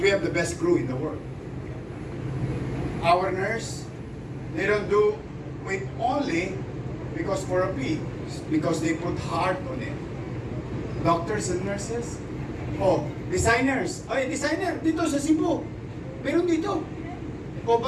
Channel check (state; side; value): identical; both; correlation 1.00